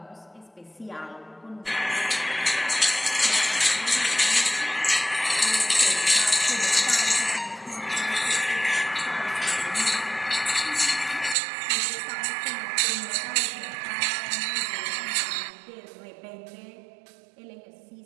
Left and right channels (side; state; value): left; drops out; at 11.4 s